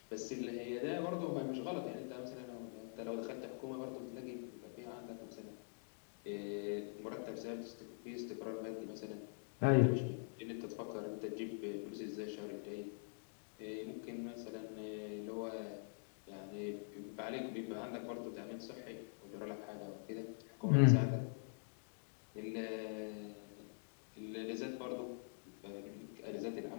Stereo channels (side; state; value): right; silent; digital silence